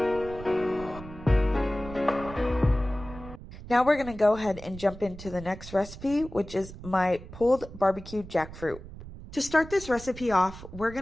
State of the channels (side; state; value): right; noise; rumble, 14 dB below the sound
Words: Now we're going to go ahead and jump into the next recipe, which is my pulled barbecue jackfruit. To start this recipe off, we're